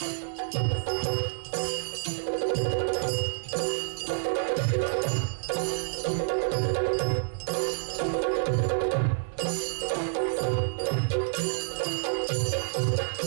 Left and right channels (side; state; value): left; silent; 59 dB below the other